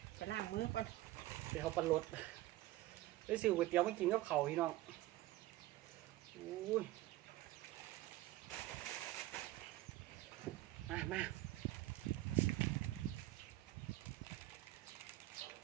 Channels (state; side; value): quieter; left; 16.7 dB